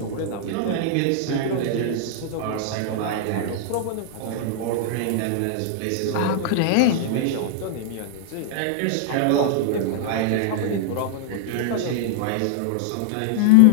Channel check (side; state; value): both; different; correlation -0.01